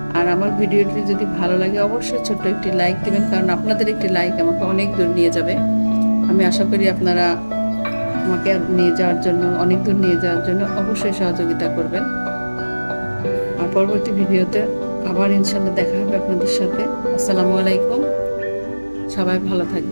আর আমার ভিডিওটি যদি ভালো লাগে অবশ্যই ছোট্ট একটি লাইক দেবেন, কারণ আপনাদের একটি লাইক আমাকে অনেক দূর নিয়ে যাবে। আমি আশা করি আপনারা আমাকে নিয়ে যাওয়ার জন্য, অনেক দূর নিয়ে যাওয়ার জন্য অবশ্যই সহযোগিতা করবেন। আর পরবর্তী ভিডিওতে আবার ইনশাল্লাহ দেখা হবে আপনাদের সাথে। আসসালামু আলাইকুম, সবাই ভালো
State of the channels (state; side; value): inverted; both; correlation -1.00